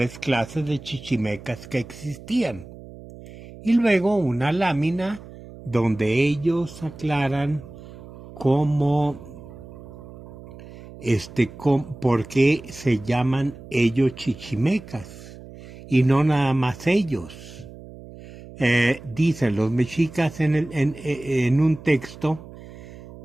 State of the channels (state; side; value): noise; right; hum, 17 dB below the sound